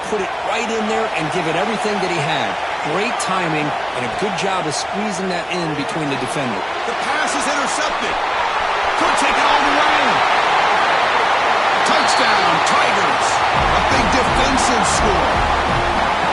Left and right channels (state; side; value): identical; both; correlation 1.00